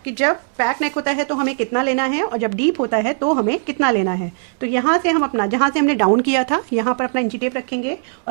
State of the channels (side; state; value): left; silent; digital silence